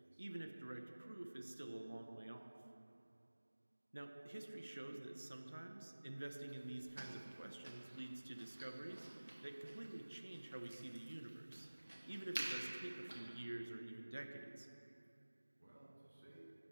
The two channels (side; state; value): both; inverted; correlation -1.00